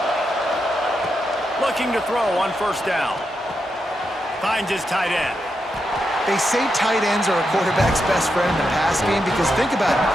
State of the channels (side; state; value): both; normal; correlation 0.85